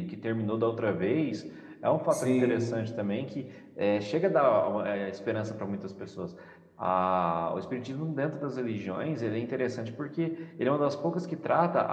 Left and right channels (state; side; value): identical; both; correlation 1.00